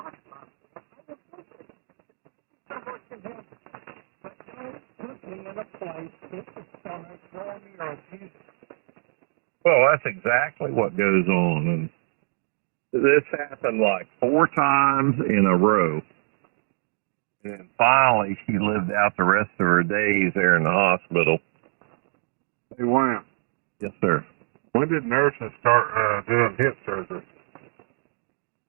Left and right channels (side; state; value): left; silent; digital silence